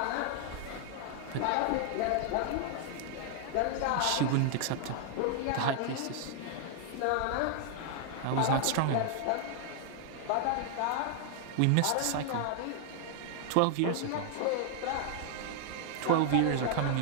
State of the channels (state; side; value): different; both; correlation 0.00